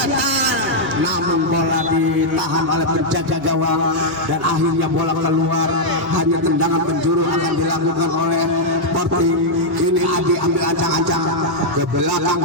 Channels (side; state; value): both; normal; correlation -0.04